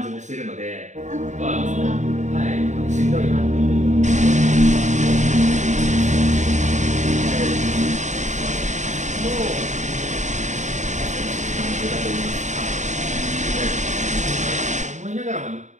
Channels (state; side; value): late; left; 0.34 ms